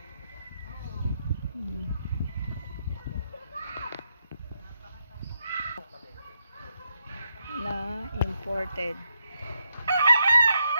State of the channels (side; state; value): both; inverted; correlation -0.80